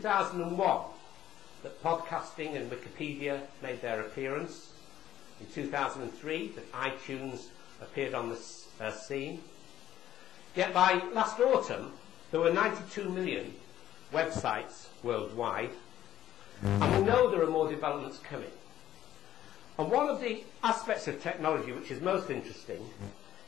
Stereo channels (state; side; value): quieter; right; 12.2 dB